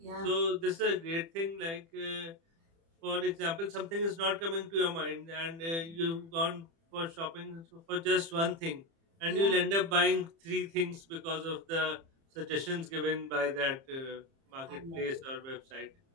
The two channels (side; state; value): left; late; 30 ms